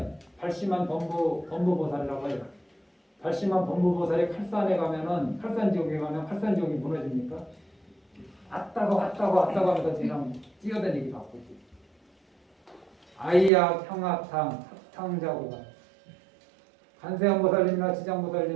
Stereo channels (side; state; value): left; drops out; at 13.5 s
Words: 발심한 범부보살이라고 해요. 발심한 범부보살이 칼산에 가면은 칼산 지역에 가면 칼산 지역이 무너집니까? 왔다가 하면서 그냥 뛰어다니기 바쁘지. 아이약, 형악탕, 합탕자고가. 간세음보살님이나